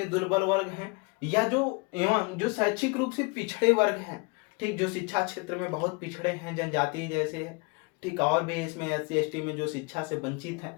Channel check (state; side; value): quieter; right; 29.9 dB